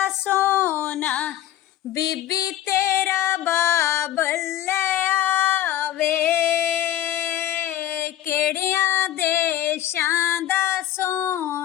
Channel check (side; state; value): right; quieter; 12.5 dB